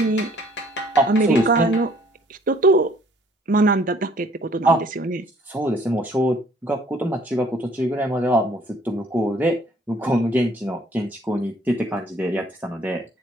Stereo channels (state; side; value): normal; both; correlation 0.59